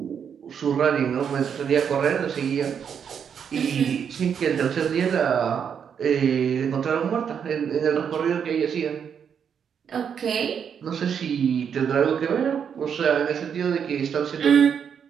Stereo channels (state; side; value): quieter; left; 7.5 dB